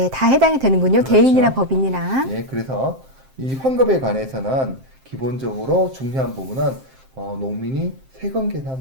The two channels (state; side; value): late; left; 7.6 ms